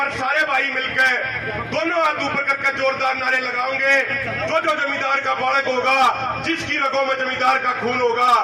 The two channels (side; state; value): both; identical; correlation 1.00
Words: सारे भाई मिलकर दोनों हाथ ऊपर करके जोरदार नारे लगाओगे। जो जमींदार का बालक होगा, जिसकी रगों में जमींदार का खून होगा,